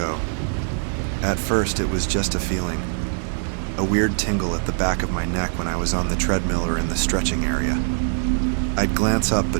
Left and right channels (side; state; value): left; silent; 64 dB below the other